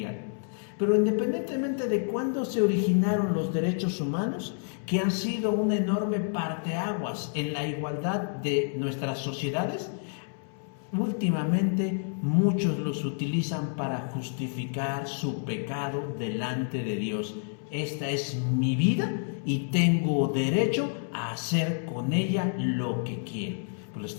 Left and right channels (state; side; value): silent; right; 59 dB below the other